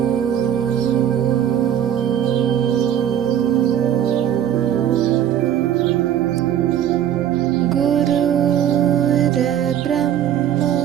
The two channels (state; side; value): quieter; left; 10.2 dB